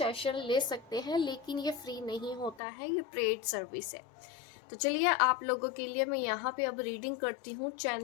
ले सकते हैं। लेकिन ये फ्री नहीं होता है, ये पेड सर्विस है। तो चलिए, आप लोगों के लिए मैं यहाँ पे अब रीडिंग करती हूँ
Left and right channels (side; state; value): right; drops out; at 2.6 s